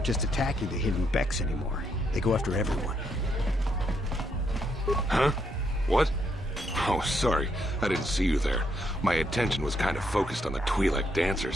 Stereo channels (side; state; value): both; normal; correlation 0.76